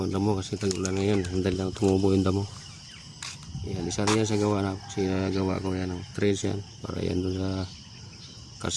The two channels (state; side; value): identical; both; correlation 1.00